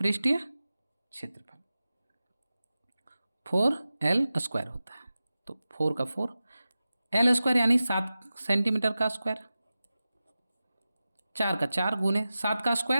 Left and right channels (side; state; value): both; inverted; correlation -0.94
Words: क्षेत्रफल 4L² होता है। तो 4 का 4, L² यानी 7 सेंटीमीटर का स्क्वायर, 4 का 4 गुने 7 का